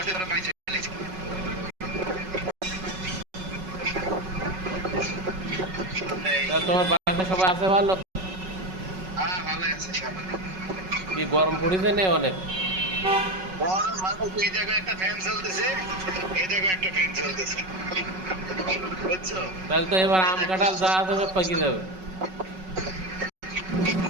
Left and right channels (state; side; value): late; left; 5.4 ms